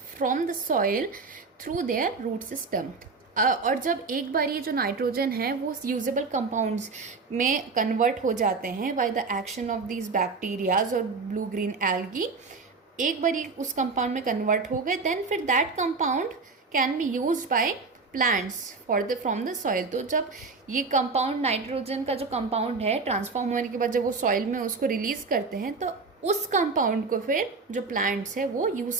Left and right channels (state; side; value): quieter; left; 4.3 dB